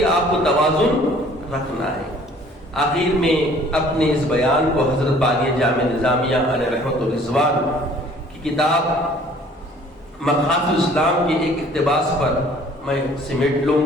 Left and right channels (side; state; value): both; normal; correlation 0.54